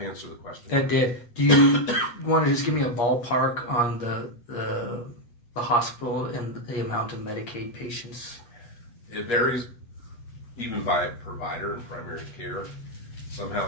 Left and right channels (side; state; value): right; late; 8.5 ms